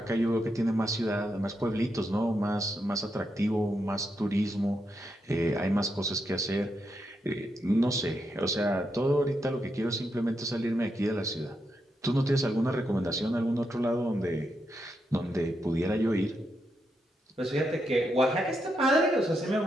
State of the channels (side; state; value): both; normal; correlation 0.83